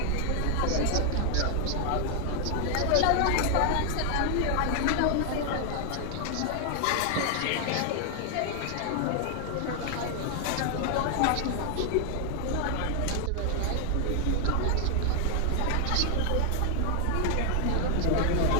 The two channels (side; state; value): both; different; correlation 0.00